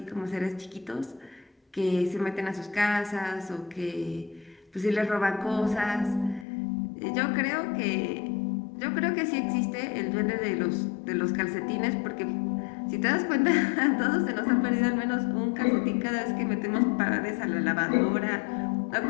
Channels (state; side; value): drops out; right; at 6.5 s